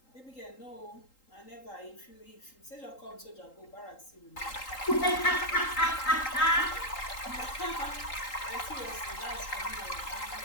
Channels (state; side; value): late; right; 3.8 ms